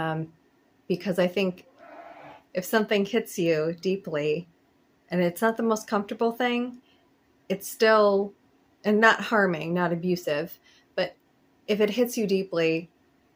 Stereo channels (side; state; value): both; identical; correlation 1.00